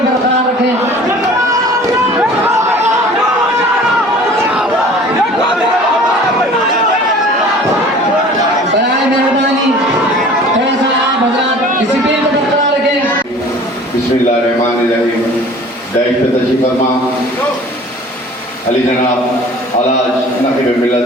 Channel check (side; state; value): both; normal; correlation 0.46